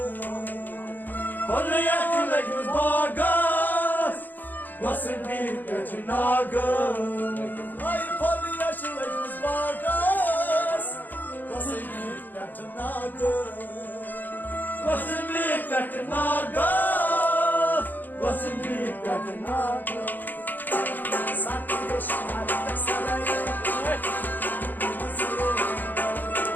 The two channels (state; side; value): late; right; 0.087 ms